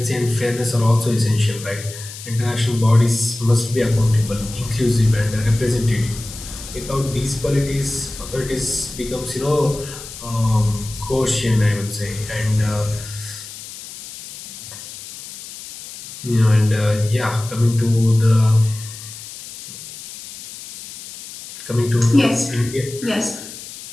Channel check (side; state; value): left; noise; hiss, 13 dB below the sound